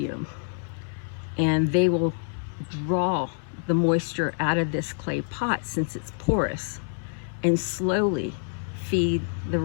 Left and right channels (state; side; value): silent; right; digital silence